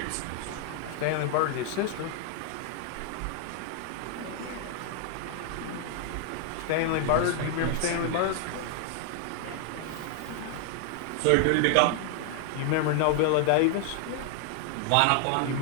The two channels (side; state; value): both; different; correlation 0.00